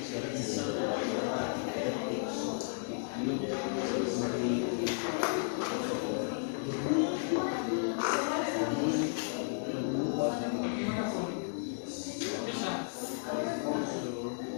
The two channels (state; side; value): silent; right; digital silence